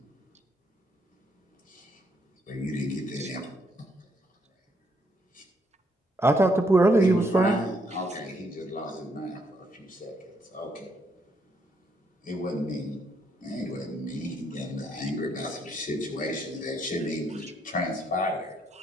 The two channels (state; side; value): normal; both; correlation 0.73